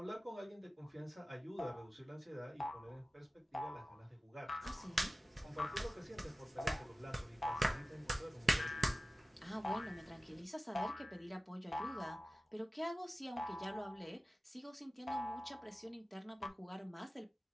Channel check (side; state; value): both; normal; correlation 0.96